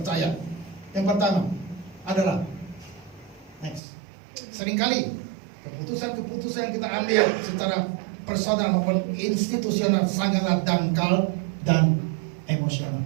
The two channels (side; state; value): left; drops out; at 3.8 s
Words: Yang pertama adalah, next, seringkali keputusan-keputusan yang kita ambil secara personal maupun institusional sangatlah dangkal dan emosional.